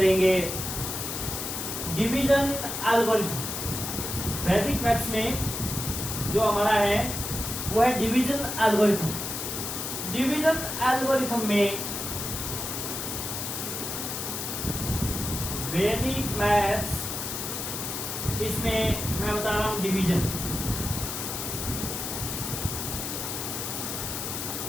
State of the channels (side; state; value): left; noise; hiss, 4 dB below the sound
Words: डिवीजन एल्गोरिथम। वैदिक मैथ्स में जो हमारा है वो है डिवीजन एल्गोरिथम। डिवीजन एल्गोरिथम में वैदिक मैथ्स, इसमें मैं बता रहा हूं डिवीजन।